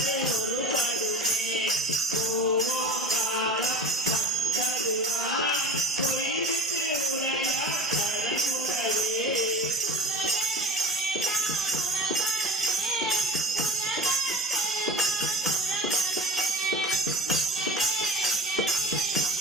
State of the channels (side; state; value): both; normal; correlation 0.34